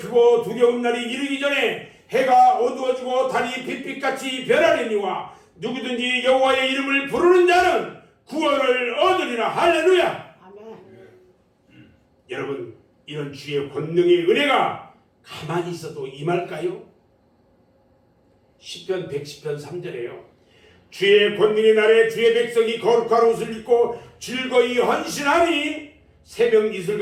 두려운 날이 이르기 전에 해가 어두워지고 달이 빛빛같이 변하려니와 누구든지 여호와의 이름을 부르는 자는 구원을 얻으리라. 할렐루야. 아멘. 여러분, 이런 주의 권능의 은혜가 가만히 있어도 임할까요? 시편 110편 3절에요. 주의 권능의 날에 주의 백성이 거룩한 옷을 입고 즐거이 헌신하니 새벽 이슬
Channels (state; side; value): identical; both; correlation 1.00